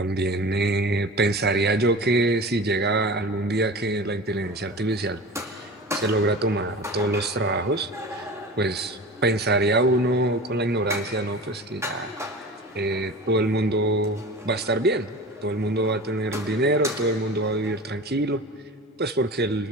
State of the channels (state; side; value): normal; both; correlation 0.35